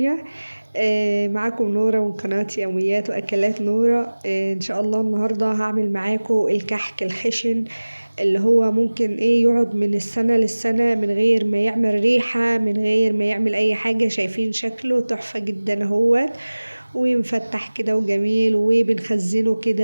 معاكم نورة من قناة يوميات وأكلات نورة. إن شاء الله النهاردة هعمل معاكم الكحك الخشن اللي هو ممكن يقعد من السنة للسنة من غير ما يعمل ريحة، من غير ما يعمل أي حاجة. شايفين شكله تحفة جدا اهوت، ومفتح كده وجميل، وبنخزنه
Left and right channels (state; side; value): inverted; both; correlation -1.00